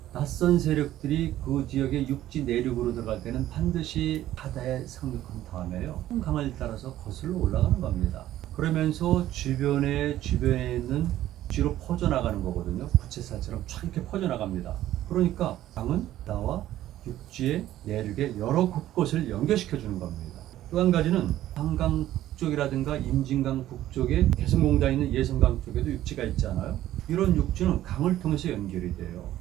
낯선 세력들이 그 지역의 육지 내륙으로 들어갈 때는 반드시 바다에 상륙한 다음에요. 강을 따라서 거슬러 올라가는 겁니다. 그러면서 주변에 있는 뒤로 퍼져나가는 거거든요. 부채살처럼 쫙 이렇게 퍼져나갑니다. 그러니까 강은 바다와 육지의 내륙의 여러 곳곳을 연결시켜 주는 겁니다. 또 한 가지는 한강 북쪽이라든가 임진강 북쪽에 개성공단에 있는 예성강 쪽에도 육지가 있잖아요. 이런 육지는 강을 통해서 연결이 돼요.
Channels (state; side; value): quieter; left; 13.5 dB